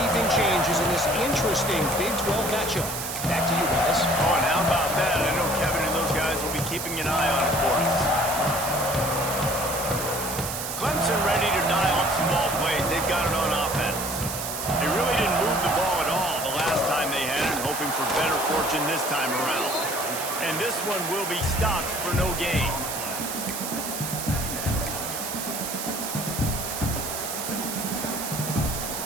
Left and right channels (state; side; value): noise; right; hiss, 5 dB below the sound